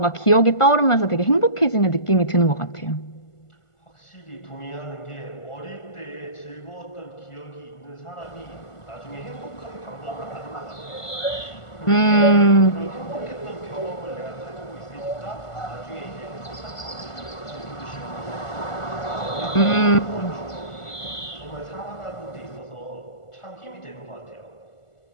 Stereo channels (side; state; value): right; late; 1.5 ms